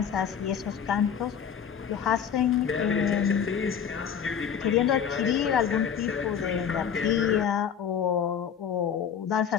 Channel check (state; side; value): quieter; right; 7.8 dB